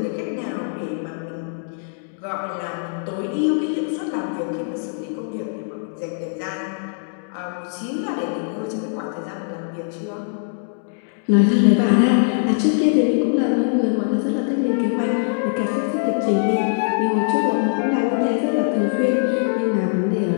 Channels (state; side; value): silent; right; digital silence